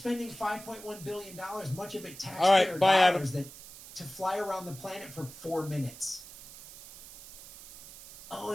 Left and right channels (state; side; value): noise; right; hiss, 16 dB below the sound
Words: $5.1 billion, much of it taxpayer dollars, to fly around the planet for 4 minutes? Oh,